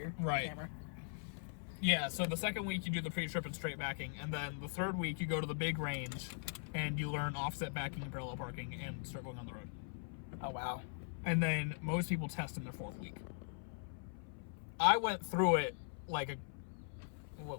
camera. Yeah, so the second week you do the pre-trip and straight backing, and then the third week you go to the big range and you learn offset backing and parallel parking and start going on the road. Oh wow. And then most people test in their 4th week. I went through it like a...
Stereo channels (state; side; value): silent; right; 51 dB below the other